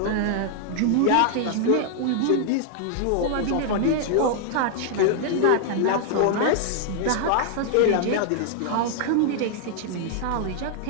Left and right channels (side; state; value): both; different; correlation 0.00